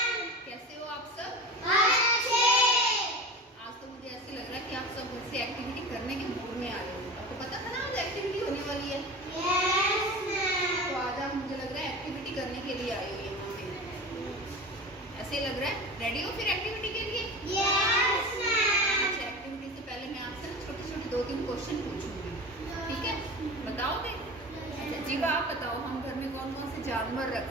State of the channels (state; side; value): normal; both; correlation 0.32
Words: कैसे हो आप सब? अच्छे। आज तो मुझे ऐसे लग रहा है कि आप सब घर से एक्टिविटी करने के मूड में आए हो। आपको पता था ना आज एक्टिविटी होने वाली है? Yes ma'am. तो आज आप मुझे लग रहा है एक्टिविटी करने के लिए आए हो यहाँ पे। ऐसे लग रहा है रेडी हो फिर एक्टिविटी के लिए? Yes ma'am. अच्छा, एक्टिविटी से पहले मैं आपसे ना छोटे-छोटे 2-3 क्वेश्चन पूछूंगी, ठीक है? बताओगे? अच्छा जीवा, आप बताओ हम घर में कौन-कौन से जानवर रख